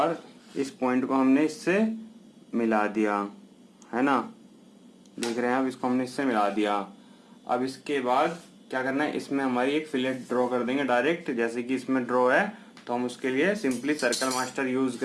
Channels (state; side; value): identical; both; correlation 1.00